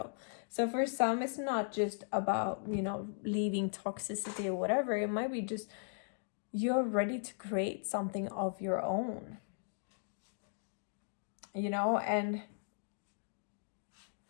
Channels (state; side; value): silent; right; digital silence